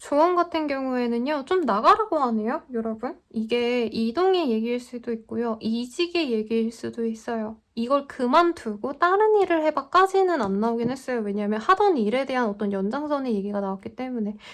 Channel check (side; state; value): both; identical; correlation 1.00